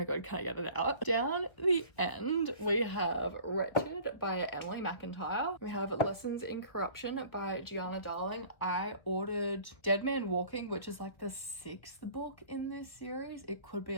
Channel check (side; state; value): right; late; 1.5 ms